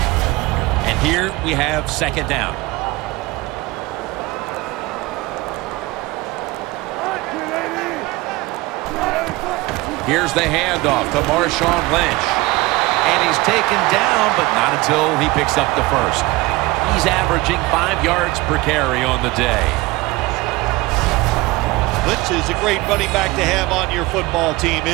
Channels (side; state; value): left; quieter; 21.2 dB